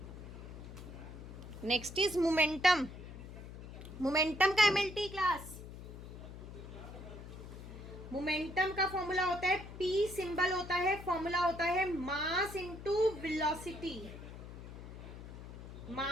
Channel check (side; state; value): left; noise; hum, 12 dB below the sound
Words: Next is momentum. Momentum का MLT class momentum का formula होता है पी, सिंबल होता है, फॉर्मूला होता है mass into velocity,